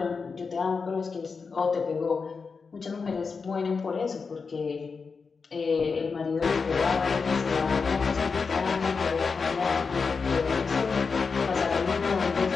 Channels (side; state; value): right; quieter; 5.0 dB